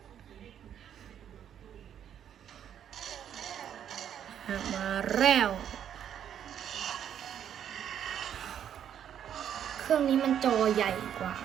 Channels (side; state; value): left; quieter; 9.5 dB